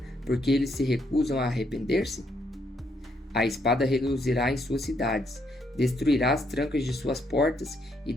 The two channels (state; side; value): normal; both; correlation 0.74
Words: porque eles se recusam a arrepender-se? A espada reduzirá em suas cidades, destruirá as trancas de suas portas e